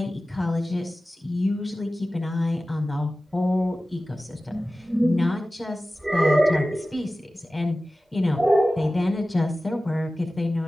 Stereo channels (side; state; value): both; normal; correlation 0.96